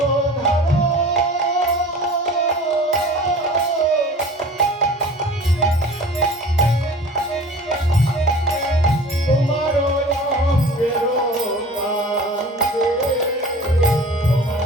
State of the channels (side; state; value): both; normal; correlation 0.42